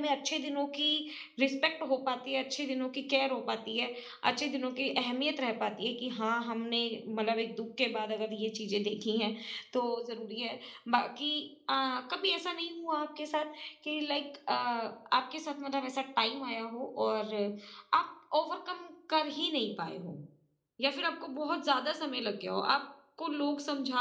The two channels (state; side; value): identical; both; correlation 1.00